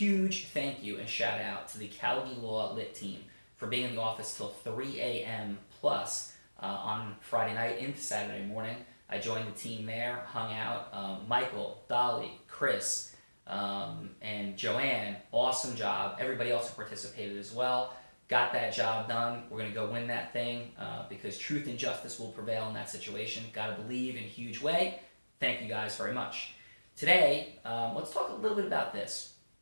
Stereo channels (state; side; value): inverted; both; correlation -1.00